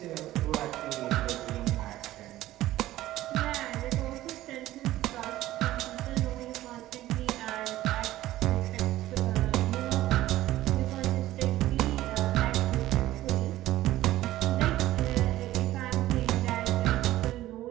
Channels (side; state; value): left; quieter; 15.1 dB